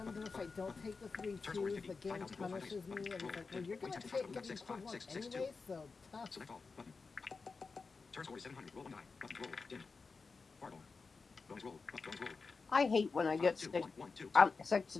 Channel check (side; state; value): right; quieter; 4.5 dB